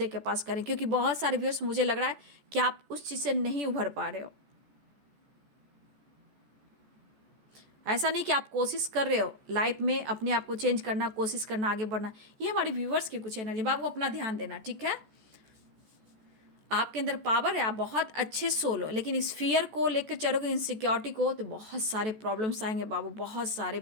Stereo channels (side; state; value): left; late; 14 ms